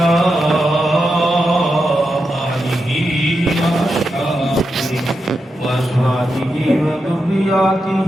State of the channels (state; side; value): normal; both; correlation 0.87